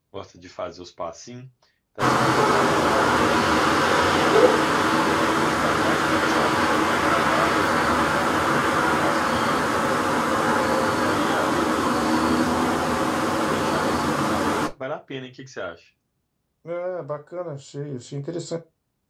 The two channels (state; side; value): identical; both; correlation 1.00